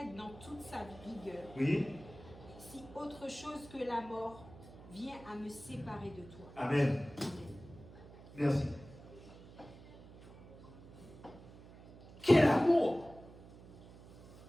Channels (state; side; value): noise; right; hum, 18 dB below the sound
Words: dans toute sa rigueur. Oui? Si autre chose que la mort vient à me séparer de toi. Amen. Merci. Quel amour!